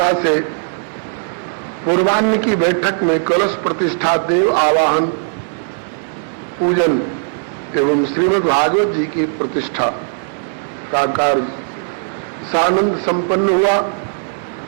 से पूर्वाह्न की बैठक में कलश प्रतिष्ठा, देव आवाहन, पूजन एवं श्रीमद् भागवत जी की प्रतिष्ठा का कार्य सानंद संपन्न हुआ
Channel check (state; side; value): silent; left; digital silence